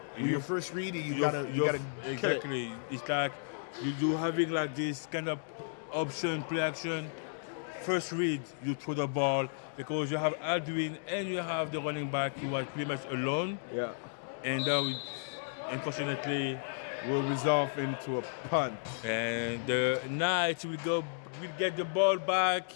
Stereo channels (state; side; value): silent; right; digital silence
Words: Your first read, you gotta exactly. It's like you having like this kind of option, play action. First read, you throw the ball because you have Aldwin and you have the running back who was pretty much alone. Yeah. And that will, unfortunately, will resolve into a punt. And the Knights will get the ball back.